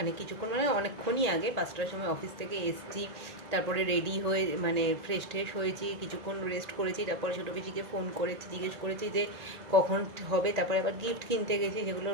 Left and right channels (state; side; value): late; left; 1.8 ms